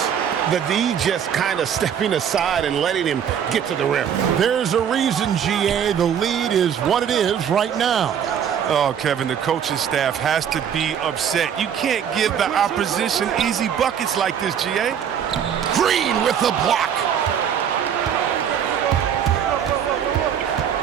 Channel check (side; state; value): left; quieter; 8.5 dB